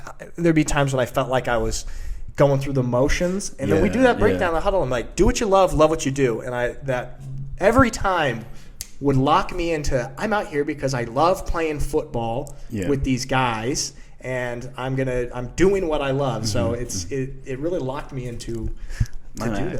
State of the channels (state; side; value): identical; both; correlation 1.00